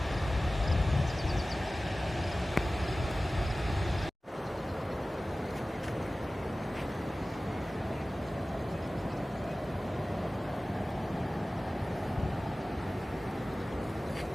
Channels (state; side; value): normal; both; correlation 0.97